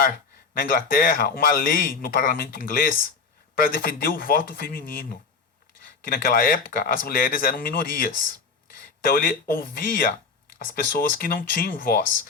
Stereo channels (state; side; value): quieter; right; 5.0 dB